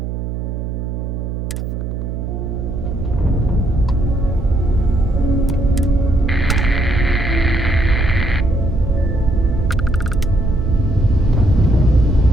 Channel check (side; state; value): right; noise; hum, 5 dB below the sound